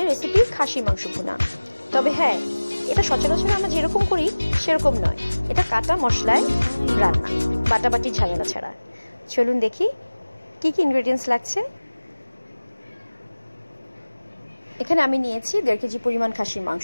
রেসিপি খাসি মাংস ভুনা। তবে হ্যাঁ, এটা সচরাচর আমরা যেরকম করি সেরকম নয়, এটা কাটা মশলায় রান্না, বাটাবাটি ঝামেলা ছাড়া। চলুন দেখি কি কি ইনগ্রেডিয়েন্টস লাগছে। এখানে আমি নিয়েছি 1.5 কেজি পরিমাণ খাসির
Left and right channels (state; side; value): inverted; both; correlation -1.00